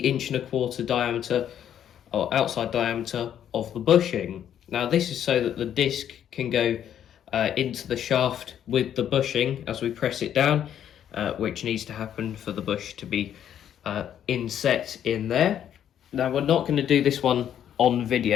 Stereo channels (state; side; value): quieter; right; 9.9 dB